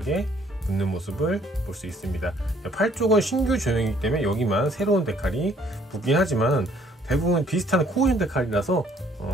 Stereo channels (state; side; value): normal; both; correlation 0.62